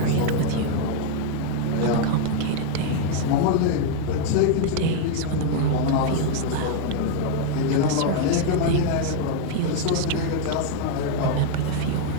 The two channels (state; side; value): different; both; correlation 0.00